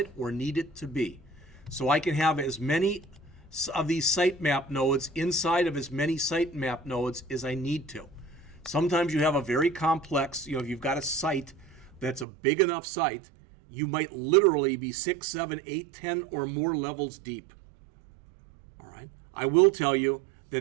or need it to be. So I can have as many of these sitemap nodes inside of as many sitemap nodes as I need to. Sometimes you have a very complex, if you've got a site that's a big enough site, you might literally be 6, 7, 8, 10 or more levels deep. All right. I will tell you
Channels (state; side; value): drops out; left; at 12.2 s